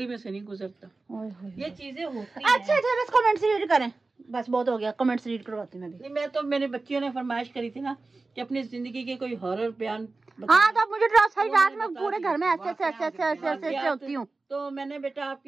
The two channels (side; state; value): left; quieter; 3.6 dB